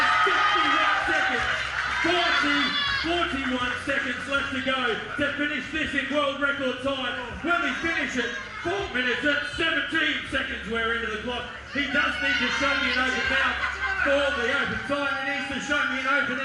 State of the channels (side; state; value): both; identical; correlation 1.00